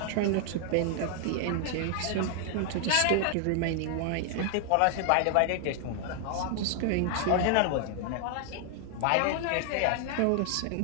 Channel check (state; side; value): different; both; correlation 0.00